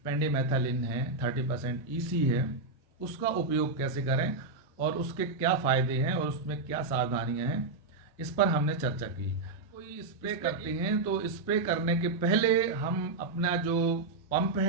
पेंडिमेथालिन है 30% ईसी है, उसका उपयोग कैसे करें और उसके क्या फ़ायदे हैं और उसमें क्या सावधानियां हैं, इस पर हमने चर्चा की। कोई स्प्रे करते हैं तो स्प्रे करने के पहले हम अपना जो पंप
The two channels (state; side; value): quieter; left; 3.6 dB